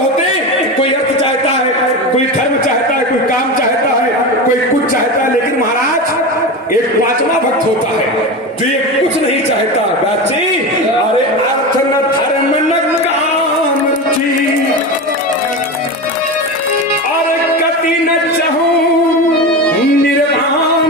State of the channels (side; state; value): both; normal; correlation 0.23